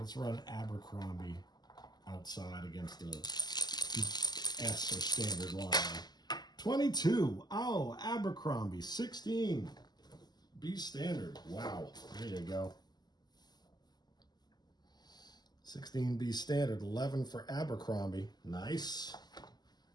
run Abercrombie outside against the S or standard line. 22. Oh, Abercrombie. 16. B standard. Wow. There you go. 16 B standard. 11 for Abercrombie. Nice.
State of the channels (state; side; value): late; right; 0.20 ms